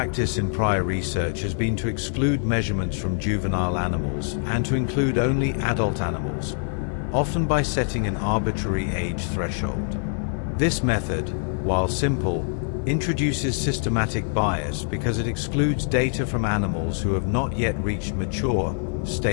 in prior research has been to exclude measurements from juvenile animals and to include only adult animals, often by setting an arbitrary age threshold. This method, while simple, introduces systematic bias because it excludes data from animals who have not yet reached mature,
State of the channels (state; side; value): silent; right; 59 dB below the other